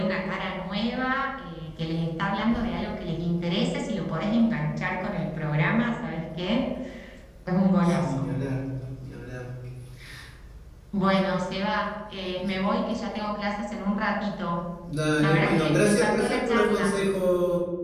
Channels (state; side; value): identical; both; correlation 1.00